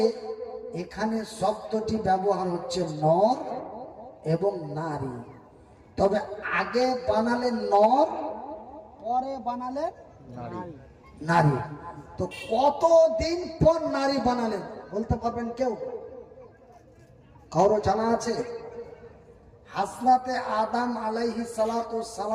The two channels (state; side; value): identical; both; correlation 1.00